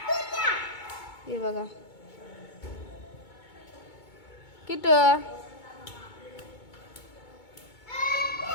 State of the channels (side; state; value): right; late; 2.2 ms